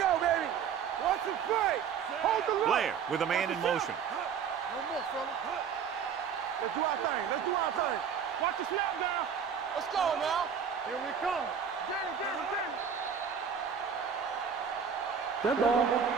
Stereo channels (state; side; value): quieter; left; 7.2 dB